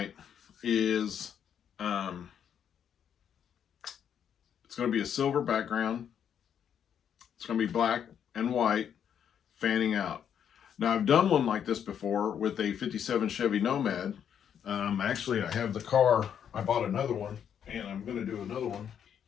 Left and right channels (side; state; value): right; quieter; 8.6 dB